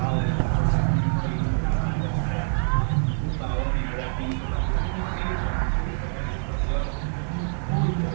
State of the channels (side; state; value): left; silent; digital silence